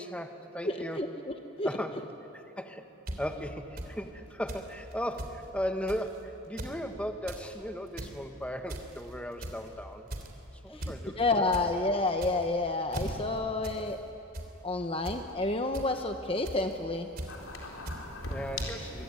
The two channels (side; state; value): both; normal; correlation 0.43